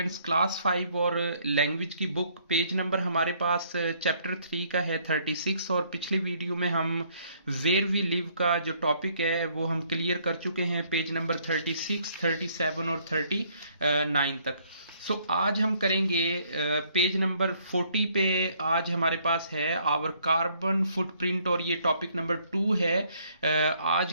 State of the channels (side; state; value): both; inverted; correlation -0.65